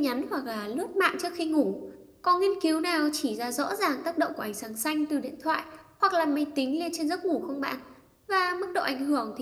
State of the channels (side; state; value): both; identical; correlation 1.00